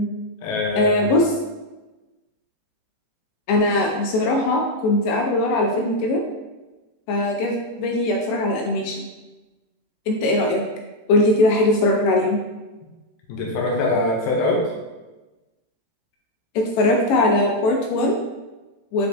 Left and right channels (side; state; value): right; late; 18 ms